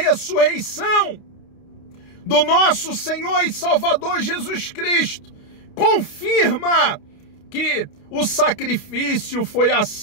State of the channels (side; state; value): right; late; 29 ms